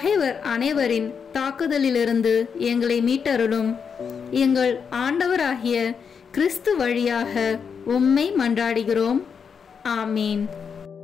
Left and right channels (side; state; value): right; quieter; 6.4 dB